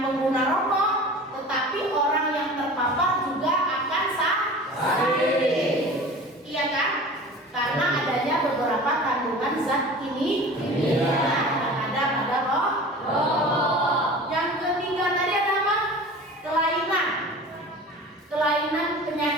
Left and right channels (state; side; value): normal; both; correlation 0.39